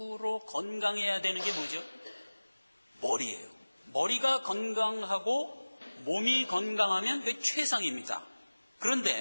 건강해야 되는 게 뭐죠? 머리예요. 머리가 건강하고 몸이 건강하면 그게 최상입니다.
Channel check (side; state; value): both; inverted; correlation -1.00